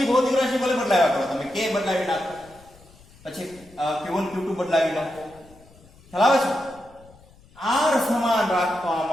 ભૌતિક રાશિ ભલે બદલાવ્યા કરો તમે, કે બદલાવી નાખો, પછી Q1 Q2 બદલાવી નાખો, ખ્યાલ આવે છે? R સમાન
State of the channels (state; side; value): noise; left; rumble, 26 dB below the sound